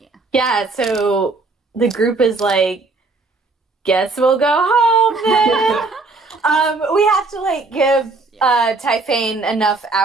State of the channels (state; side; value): quieter; left; 3.6 dB